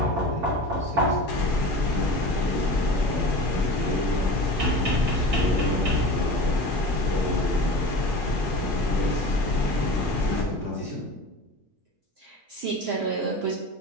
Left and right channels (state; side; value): normal; both; correlation 0.33